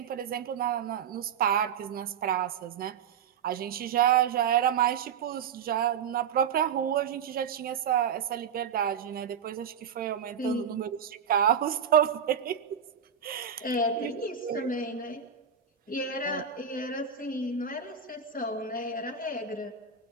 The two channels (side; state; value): left; quieter; 7.3 dB